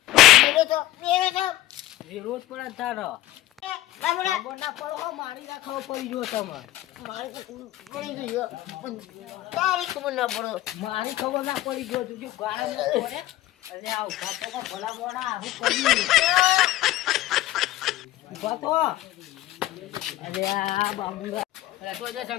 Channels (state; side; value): quieter; right; 15.6 dB